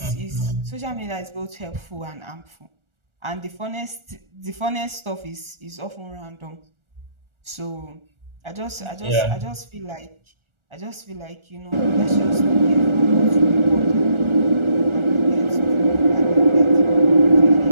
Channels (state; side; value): late; left; 1.4 ms